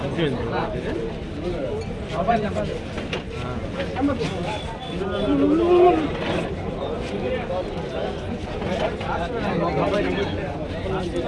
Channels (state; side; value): identical; both; correlation 1.00